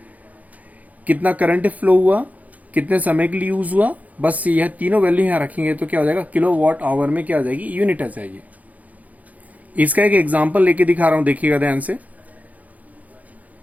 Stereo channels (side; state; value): left; late; 0.075 ms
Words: कितना करंट फ्लो हुआ, कितने समय के लिए यूज हुआ, बस यह तीनों वैल्यू यहां रखेंगे तो क्या हो जाएगा, किलोवाट आवर में क्या आ जाएगी, यूनिट आ जाएगी। इसका एक एग्जांपल लेके दिखा रहा हूं, देखिएगा ध्यान से।